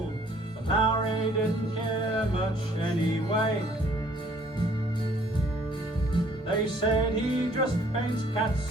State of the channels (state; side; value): noise; left; rumble, 28 dB below the sound